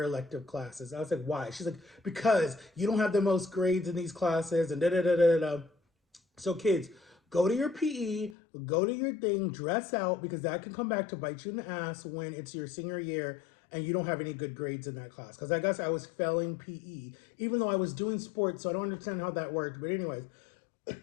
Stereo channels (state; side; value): drops out; right; at 8.3 s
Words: elective classes. I was like, why? She's like, because you don't have the most grades in these classes and da da da da da. So kids, go to your PE, go to your thing, dress out, because that can come back to bite you in the ass when it's your senior year and you don't have any good grades in that class. Because I guess I was failing PE, even though I was doing sports, so I don't understand how that worked. But anyways,